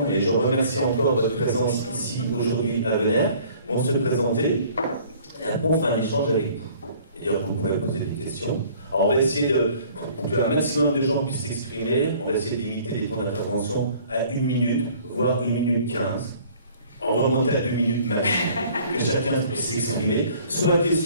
et je remercie encore votre présence ici aujourd'hui à Venère, vont se présenter. Et après, on fera un échange avec vous. C'est-à-dire que vous pourrez poser des questions. Alors on va essayer pour qu'un maximum de gens puissent s'exprimer, on va essayer de limiter les temps d'intervention à 1 minute, voire 1 minute 15. On va remonter à 2 minutes max, que chacun puisse s'exprimer, soit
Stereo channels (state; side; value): inverted; both; correlation -0.54